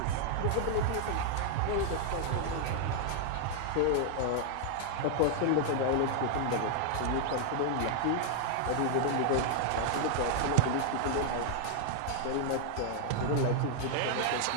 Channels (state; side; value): different; both; correlation -0.01